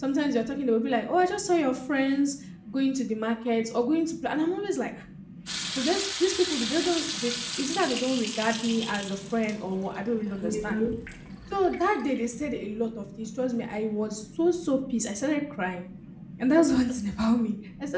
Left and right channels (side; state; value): both; identical; correlation 1.00